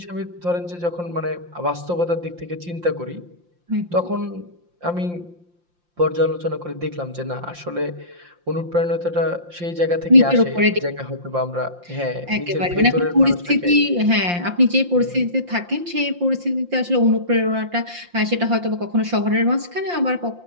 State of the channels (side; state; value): left; late; 5.7 ms